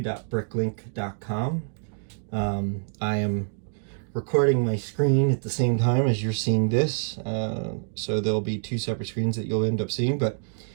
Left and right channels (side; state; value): left; silent; digital silence